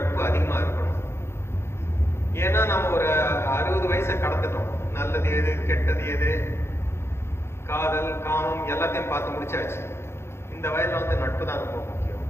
அதிகமா இருக்கணும். ஏன்னா நம்ம ஒரு 60 வயசை கடந்துட்டோம். நல்லது எது கெட்டது எது காதல் காமம் எல்லாத்தையும் பார்த்து முடிச்சாச்சு. இந்த வயதுல வந்து நட்பு தான் ரொம்ப முக்கியம்.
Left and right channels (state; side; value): late; right; 0.12 ms